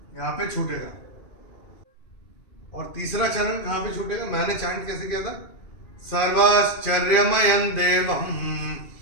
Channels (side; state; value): right; late; 2.4 ms